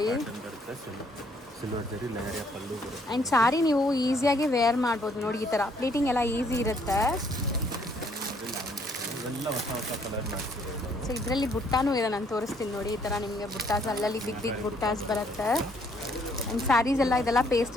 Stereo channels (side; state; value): both; normal; correlation 0.66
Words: ಸಿಲ್ವರ್ ಜರಿ ಲೆಹರಿಯಾ ಪಲ್ಲು ಬರುತ್ತೆ. ಆ್ಯಂಡ್ ಸಾರಿ ನೀವು ಈಸಿಯಾಗಿ ವೇರ್ ಮಾಡ್ಬೋದು ನೋಡಿ, ಈ ಥರ ಪ್ಲೀಟಿಂಗ್ ಎಲ್ಲ ಈಸಿ ಇರುತ್ತೆ. ಇವೆಲ್ಲ ಹೊಸ ಹೊಸ ಕಲರ್ ಮಾಡ್ತೀವಿ. ಸೊ ಇದರಲ್ಲಿ ಬುಟ್ಟಾನೂ ಇದೆ, ನಾನು ತೋರಿಸ್ತೀನಿ ನೋಡಿ. ಈ ಥರ ನಿಮಗೆ ಬುಟ್ಟಾಸ್ ಅಲ್ಲಲ್ಲಿ ಬಿಗ್ ಬಿಗ್ ಬುಟ್ಟಾಸ್ ಬರುತ್ತೆ. ಆ್ಯಂಡ್ ಸ್ಯಾರೀಸ್ ಎಲ್ಲ ಇದೆಲ್ಲ